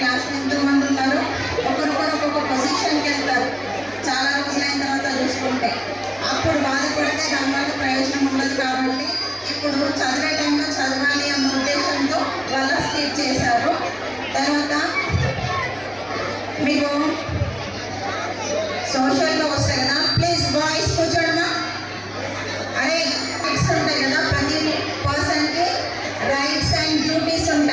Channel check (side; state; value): left; noise; hum, 28 dB below the sound